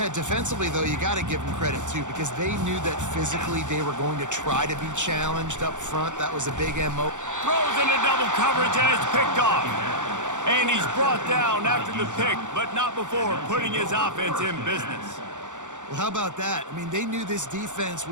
defensively, though, you got to give them credit, too, because they knew that physically they were going to try to be challenged up front. That was a big MO. Throws into double coverage, and it's picked off. And he's brought down after the pick, but not before putting his offense in business. Well, how about that? I mean, they knew this defense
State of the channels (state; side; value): late; left; 0.85 ms